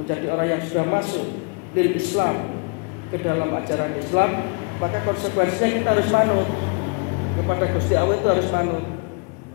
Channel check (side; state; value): right; quieter; 34.2 dB